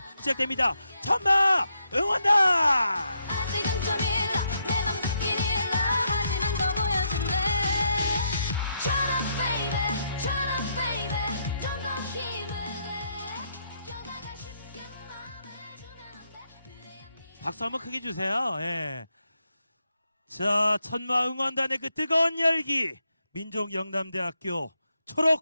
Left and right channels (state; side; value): inverted; both; correlation -0.79